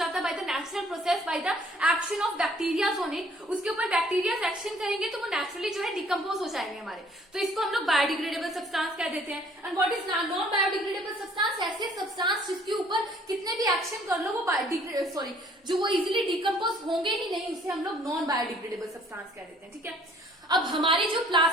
है by the natural process, by the action of bacteria on it। उसके ऊपर बैक्टीरिया एक्शन करेंगे तो वो नेचुरली जो है डिकम्पोज हो जाएंगे हमारे, तो इसको हम लोग बायोडिग्रेडेबल सब्सटेंस कह देते हैं। And what is non biodegradable substance, ऐसे सब्सटेंस जिसके ऊपर कितने भी एक्शन कर लो वो जो वो इजिली डिकम्पोज होंगे ही नहीं, उसे हम लोग नॉन बायोडिग्रेडेबल सब्सटेंस कह देते हैं, ठीक है। अब हमारी जो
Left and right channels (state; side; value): normal; both; correlation 0.59